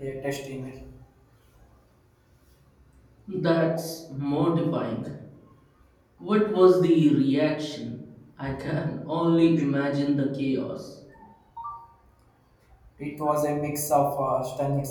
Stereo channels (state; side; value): identical; both; correlation 1.00